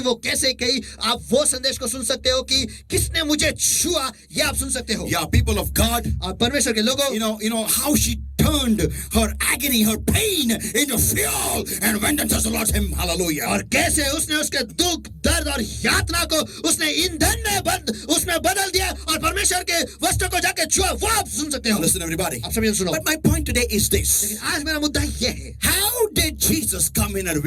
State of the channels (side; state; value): both; identical; correlation 1.00